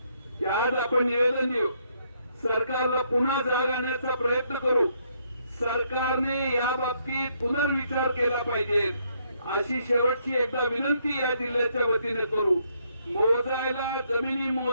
की आज आपण निवेदन देऊ, सरकारला पुन्हा जाग आणण्याचा प्रयत्न करू. सरकारने या बाबतीत पुनर्विचार केला पाहिजे अशी शेवटची एकदा विनंती या जिल्ह्याच्या वतीने करू. मोजायला जमिनी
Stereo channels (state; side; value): inverted; both; correlation -0.72